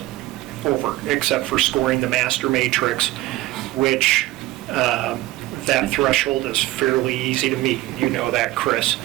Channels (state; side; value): quieter; left; 17.4 dB